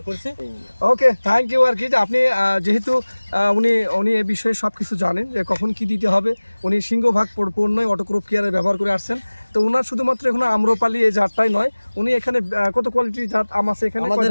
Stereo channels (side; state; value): both; inverted; correlation -1.00